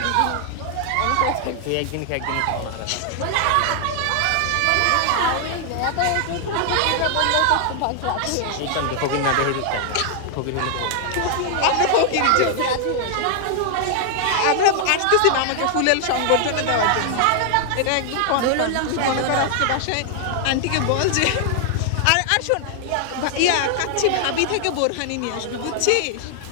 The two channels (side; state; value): both; different; correlation 0.00